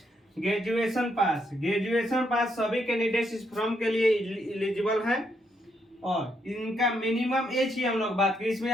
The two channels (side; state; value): both; normal; correlation 0.76